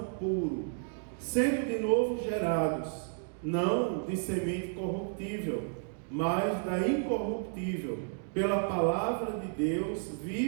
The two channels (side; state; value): left; silent; digital silence